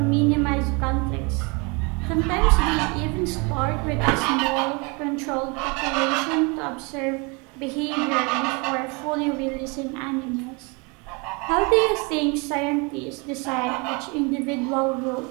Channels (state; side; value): quieter; left; 30.1 dB